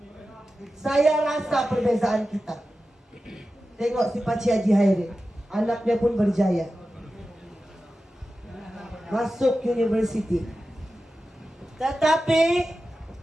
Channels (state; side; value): normal; both; correlation 0.93